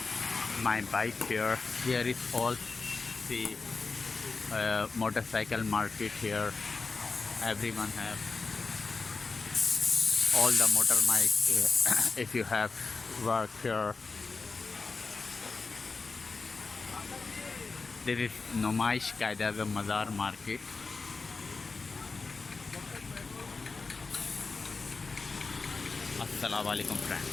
my bike here. Here is all the motorcycle market here. Everyone have all the motor bike. If you have work here, there is Numaish Qaeda the Mazar market. Assalamu alaikum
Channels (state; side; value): quieter; right; 4.2 dB